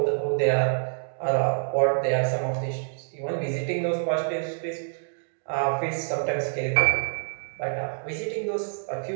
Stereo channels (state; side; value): silent; left; digital silence